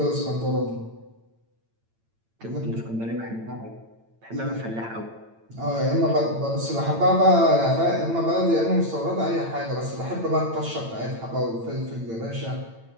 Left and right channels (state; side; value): late; left; 8.9 ms